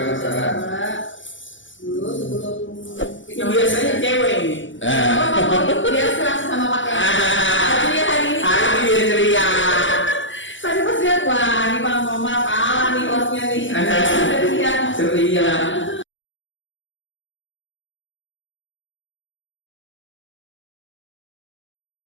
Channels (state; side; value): late; right; 0.55 ms